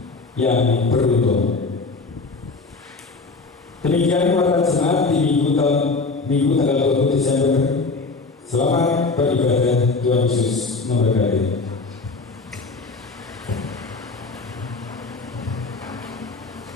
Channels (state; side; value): quieter; right; 3.9 dB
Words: yang beruntung. Demikian warta jemaat di minggu tanggal 20 Desember. Selamat beribadah, Tuhan Yesus memberkati.